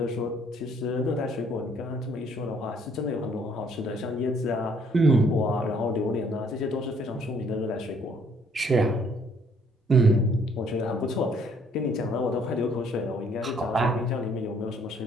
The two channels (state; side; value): normal; both; correlation 0.64